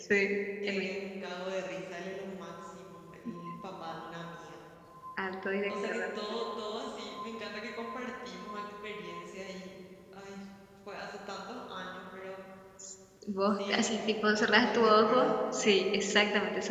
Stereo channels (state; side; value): identical; both; correlation 1.00